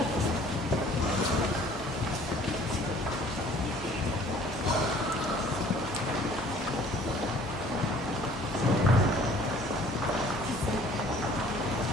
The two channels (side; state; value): both; normal; correlation 0.54